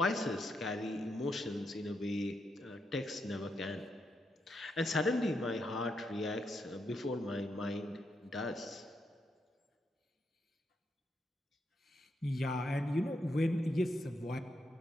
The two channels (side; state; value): both; normal; correlation 0.81